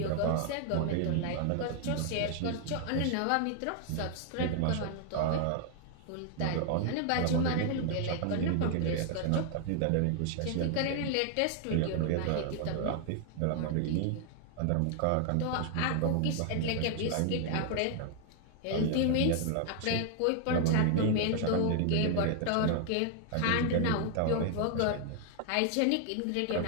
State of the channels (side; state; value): both; different; correlation 0.00